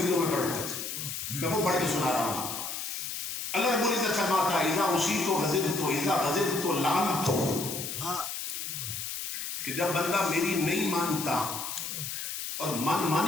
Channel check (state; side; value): noise; left; hiss, 5 dB below the sound